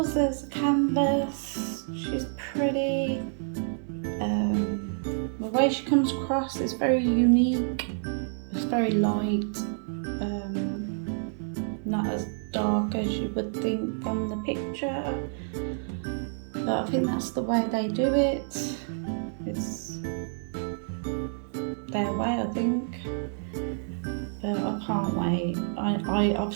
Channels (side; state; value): left; silent; digital silence